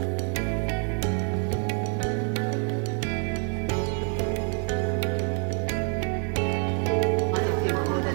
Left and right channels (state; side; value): quieter; left; 37.5 dB